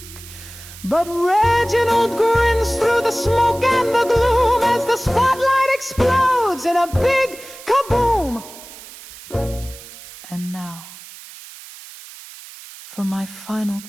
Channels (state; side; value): noise; right; hiss, 17 dB below the sound